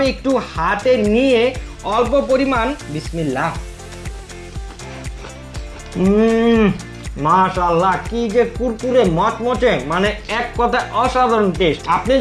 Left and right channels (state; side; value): identical; both; correlation 1.00